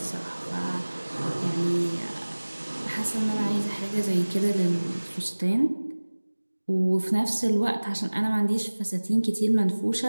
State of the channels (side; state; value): both; inverted; correlation -1.00